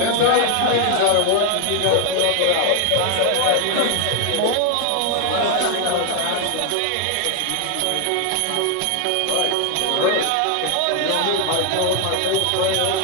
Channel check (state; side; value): different; both; correlation 0.01